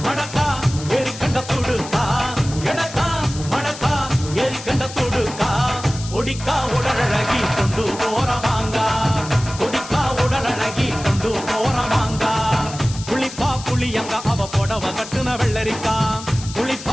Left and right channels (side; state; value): left; noise; hiss, 13 dB below the sound